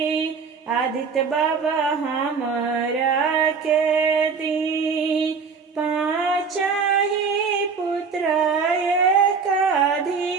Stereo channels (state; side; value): quieter; left; 5.4 dB